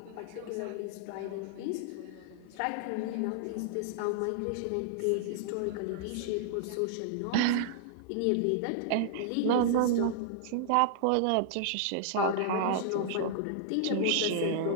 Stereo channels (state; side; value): different; both; correlation -0.01